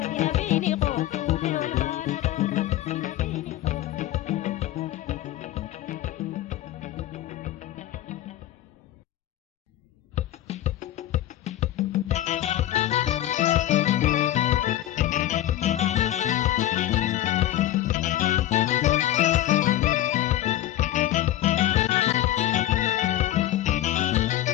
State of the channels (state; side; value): quieter; right; 13.6 dB